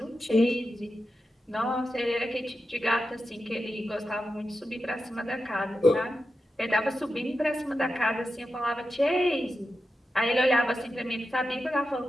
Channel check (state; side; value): normal; both; correlation 0.90